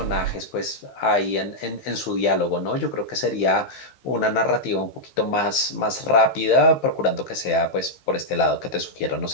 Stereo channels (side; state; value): right; late; 15 ms